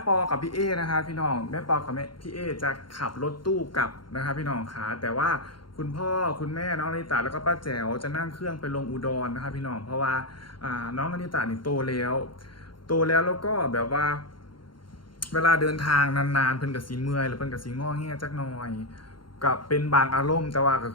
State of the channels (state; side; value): late; right; 0.72 ms